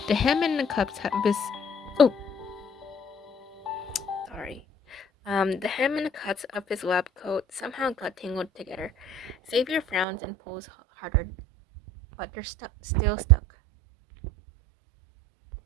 The hem and the cups have this... Oh! Sorry. The hem and the cuts of his lab coat somehow got tangled together. Xavier frowns and pulls harder, but they're still stuck.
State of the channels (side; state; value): left; drops out; at 10.1 s